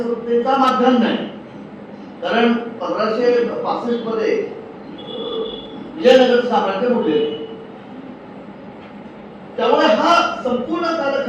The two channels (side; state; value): both; identical; correlation 1.00